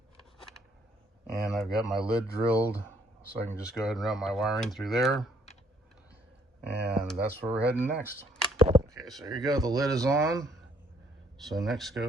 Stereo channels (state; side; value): normal; both; correlation 0.65